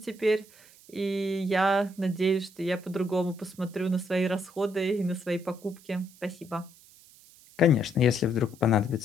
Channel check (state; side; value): noise; right; hiss, 25 dB below the sound